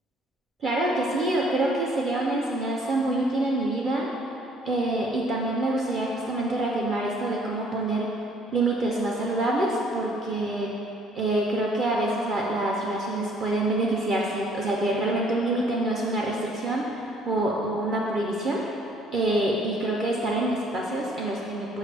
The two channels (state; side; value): normal; both; correlation 0.60